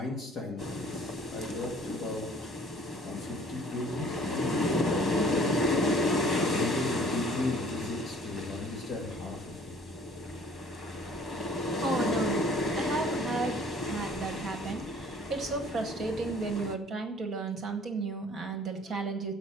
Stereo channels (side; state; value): both; normal; correlation 0.53